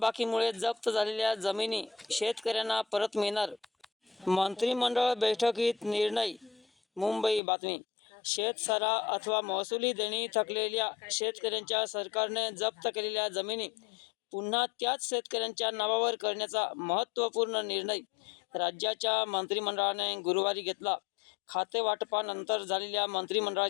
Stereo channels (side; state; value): right; drops out; at 7.4 s